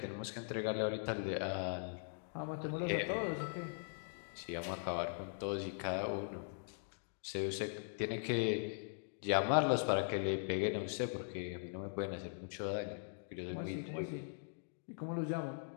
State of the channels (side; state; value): right; silent; digital silence